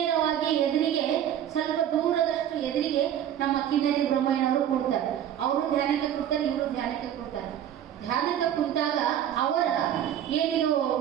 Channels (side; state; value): left; quieter; 10.4 dB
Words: ಎದುರಿಗೆ, ಸ್ವಲ್ಪ ದೂರದಷ್ಟು ಎದುರಿಗೆ ನಮ್ಮ ಕಿನ್ನರಿ ಬ್ರಹ್ಮಯ್ಯನವರು ಕೂಡ್ತಾರೆ. ಅವರು ಧ್ಯಾನಕ್ಕೆ ಕೂಡ್ತಾರೆ, ಇವರು ಧ್ಯಾನಕ್ಕೆ ಕೂಡ್ತಾರೆ. ಧ್ಯಾನಕ್ಕೆ ಕುಂತಾಗ ಅವರ ಏನಿದು